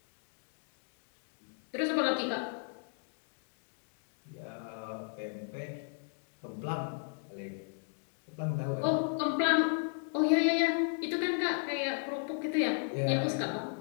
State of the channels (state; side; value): silent; right; 55 dB below the other